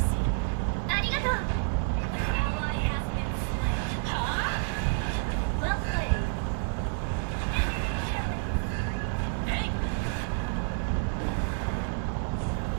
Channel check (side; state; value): left; silent; digital silence